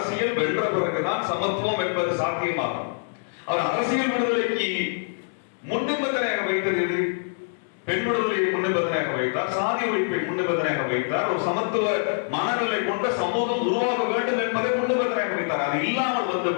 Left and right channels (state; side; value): silent; right; digital silence